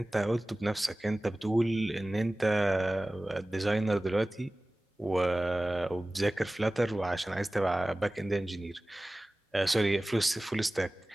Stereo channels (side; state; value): both; normal; correlation 0.98